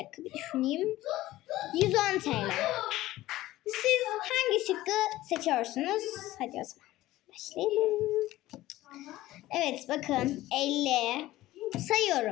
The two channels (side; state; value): right; quieter; 16.2 dB